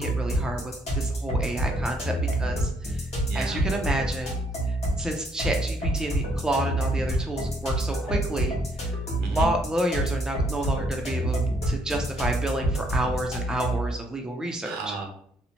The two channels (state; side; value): normal; both; correlation 0.69